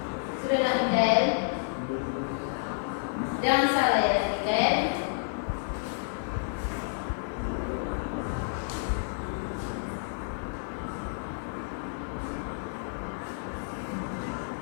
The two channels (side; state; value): right; silent; 58 dB below the other